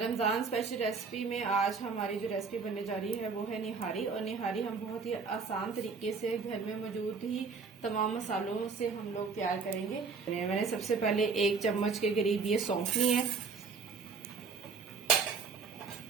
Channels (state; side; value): quieter; left; 5.0 dB